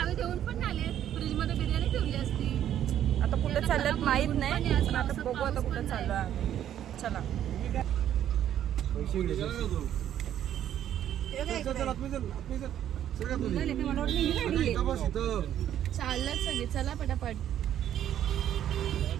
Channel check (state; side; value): quieter; left; 10.8 dB